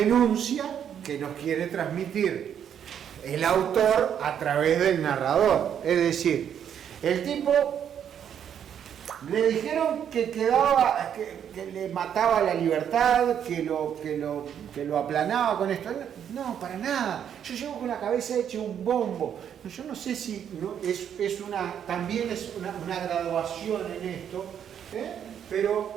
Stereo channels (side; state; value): left; quieter; 8.9 dB